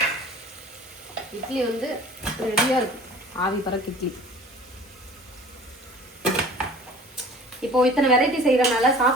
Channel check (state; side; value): normal; both; correlation 0.45